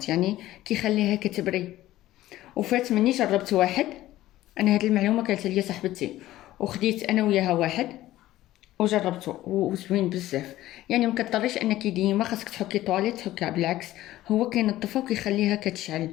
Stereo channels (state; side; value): quieter; right; 15.2 dB